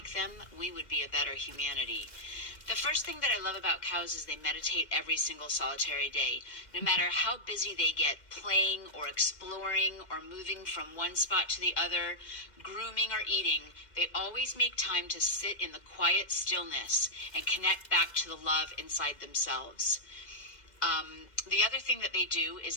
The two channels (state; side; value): late; right; 2.1 ms